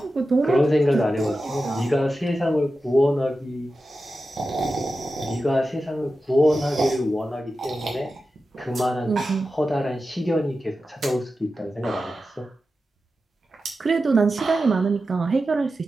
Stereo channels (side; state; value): both; normal; correlation 0.92